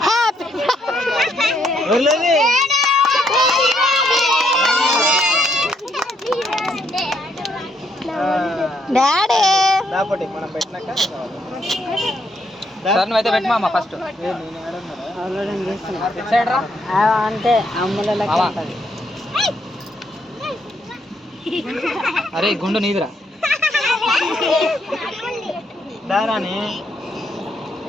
డాడీ మనం పెట్టినాక సార్ నువ్వైతే పెట్టమా ఫస్ట్. అంతే అమ్ముల అరే గుండు నీదిరా.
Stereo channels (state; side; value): normal; both; correlation 0.73